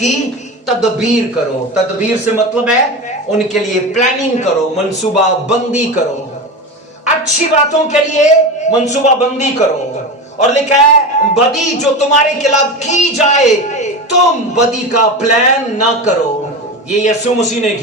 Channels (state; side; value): normal; both; correlation 0.24